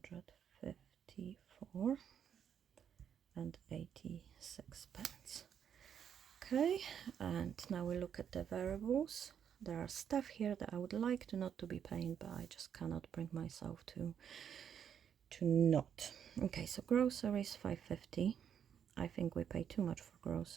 and 86 pence. Okay, and now we look at the variables. There are stuff here that I would like to not to be paying, but I just cannot bring myself to not. Okay, so groceries, $5.50. I think we pay too much for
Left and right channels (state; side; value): quieter; left; 8.4 dB